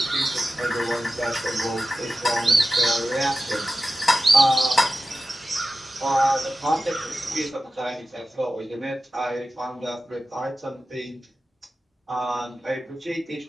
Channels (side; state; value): both; normal; correlation 0.94